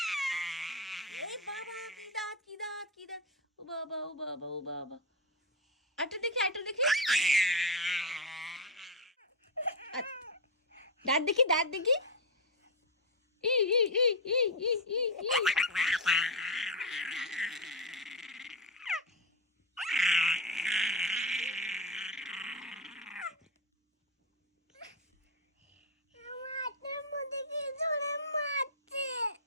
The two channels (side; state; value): both; normal; correlation 0.10